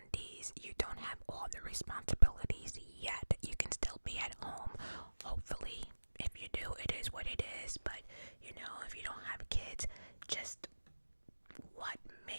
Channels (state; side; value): inverted; both; correlation -1.00